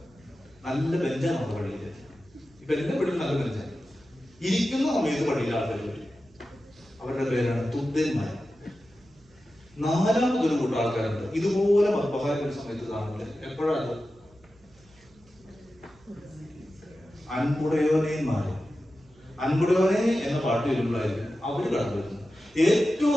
നല്ല ബെഞ്ചാണ് പള്ളിയിൽ. ഇപ്പൊ എന്റെ പള്ളിയിൽ നല്ല ബെഞ്ചാണ്. ഇരിക്കുന്ന സമയത്ത് പള്ളിയിൽ ആൾക്കാർ വരും. അവരുടെ പേരാണ് തുദ്യന്മാർ. നാലാമതൊരു കൂട്ടം ആൾക്കാരുണ്ട്, ഇതുപോലെ മദ്ബഹാരൊരു സമയത്ത് കാണുന്നത്. എപ്പോഴാണ്? അൻപുടയോനേന്മാര്. അൻപുടയോനെ എന്ന പാട്ട് വരുമ്പോഴായിരിക്കും അവര് കടന്നു വരുന്നത്. ഏറ്റവും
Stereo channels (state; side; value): noise; right; hum, 29 dB below the sound